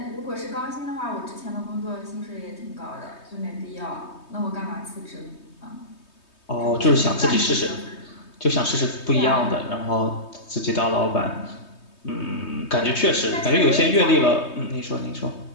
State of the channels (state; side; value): late; right; 3.2 ms